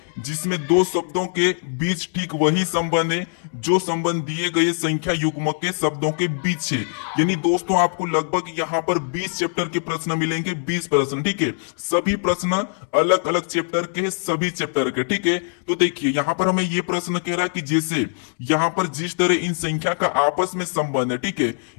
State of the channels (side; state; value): right; silent; 64 dB below the other